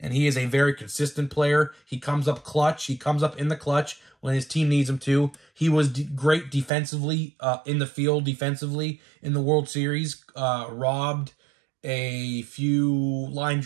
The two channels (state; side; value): drops out; left; at 6.7 s